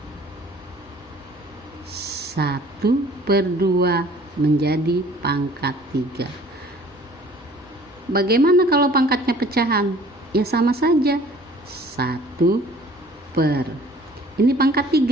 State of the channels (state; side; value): normal; both; correlation 0.52